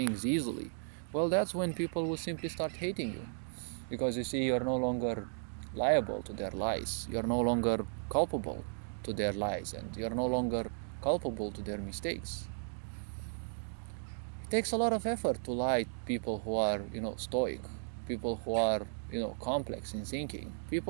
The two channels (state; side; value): silent; left; digital silence